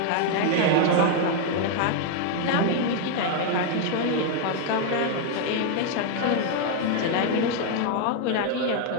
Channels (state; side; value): different; both; correlation 0.00